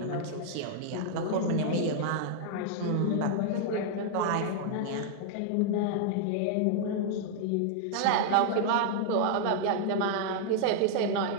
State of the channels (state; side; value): different; both; correlation -0.01